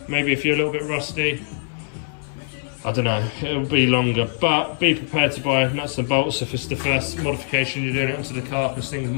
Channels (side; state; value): right; silent; 61 dB below the other